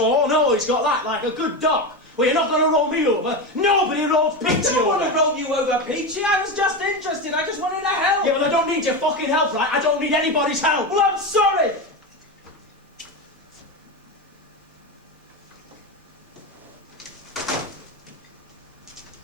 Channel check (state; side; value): normal; both; correlation 0.17